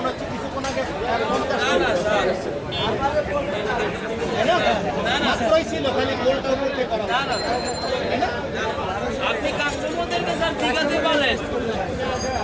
হচ্ছে কিছুক্ষণ আগে 50 মাত্রই ছিল, খালি গোলটা উঠে করা। আপনি কাস্টমারদেরকে স্যার ঠিকাতে বলেন।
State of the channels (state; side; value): identical; both; correlation 1.00